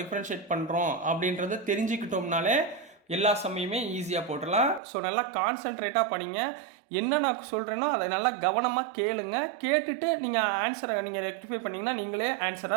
பண்ணுறோம் அப்படின்றத தெரிஞ்சுக்கிட்டோம்னாலே எல்லா சமயமே ஈஸியாக போட்டுடலாம். ஸோ நல்லா கான்சென்ட்ரேட்டாக படிங்க. என்ன நான் சொல்கிறேனோ அதை நல்லா கவனமாக கேளுங்க. கேட்டுட்டு நீங்கள் ஆன்சரை நீங்கள் ரெக்டிஃபை பண்ணிங்கன்னா நீங்களே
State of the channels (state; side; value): drops out; left; at 4.8 s